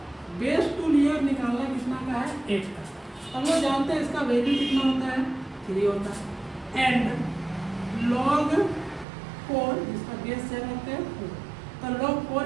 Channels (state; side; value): drops out; left; at 9.1 s